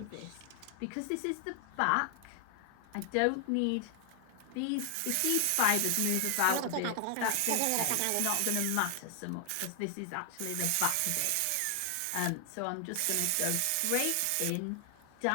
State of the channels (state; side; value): different; both; correlation 0.00